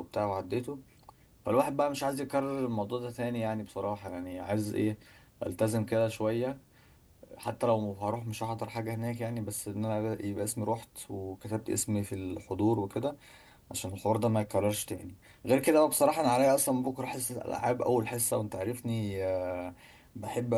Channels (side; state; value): both; identical; correlation 1.00